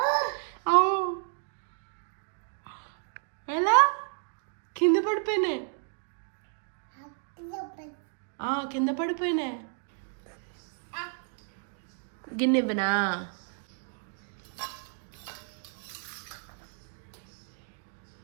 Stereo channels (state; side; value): silent; left; 57 dB below the other